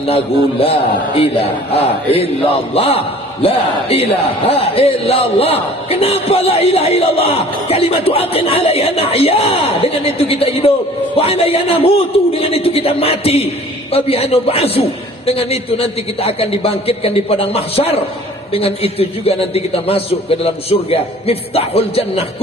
la ilaha illallah. La ilaha illallah. Kenapa la ilaha illallah? Kalimatu aqin alaiha nahya. Dengan itu kita hidup. Wa alaiha namutu. Dengan itu kita mati. Wa biha nub'atsu. Dengan itu nanti kita akan dibangkitkan di padang mahsyar. Dengan itu juga nanti kita masuk ke dalam surga. Miftahul jannah,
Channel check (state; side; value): normal; both; correlation 0.49